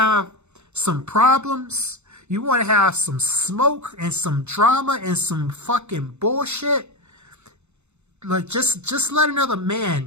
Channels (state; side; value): late; left; 0.82 ms